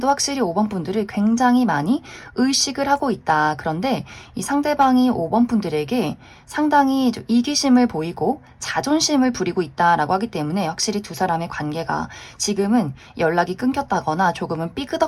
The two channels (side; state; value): both; identical; correlation 1.00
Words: 확실히 5번 분들을 굉장히 많이 의식을 하고 있다. 그런데 이 상대방이 5번 분들에게 상당히 좀 이기심을 보이고 자존심을 부리고 있다라고 하기 때문에 확실히 두 사람의 관계가 지금은 연락이 끊겼다거나 조금은